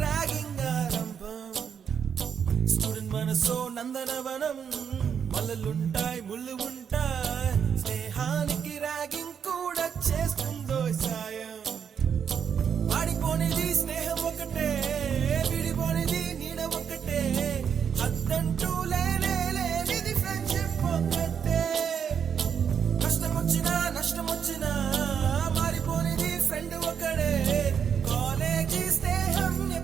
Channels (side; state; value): left; quieter; 7.5 dB